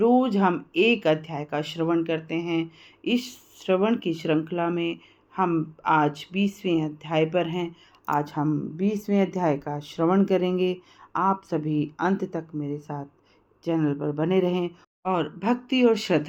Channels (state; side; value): identical; both; correlation 1.00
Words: हम एक अध्याय का श्रवण करते हैं। इस श्रवण की श्रृंखला में हम आज 20वें अध्याय पर हैं। आज हम 20वें अध्याय का श्रवण करेंगे। आप सभी अंत तक मेरे साथ चैनल पर बने रहें और भक्ति और